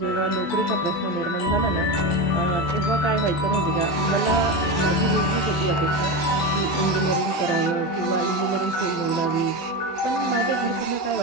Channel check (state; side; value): late; right; 12 ms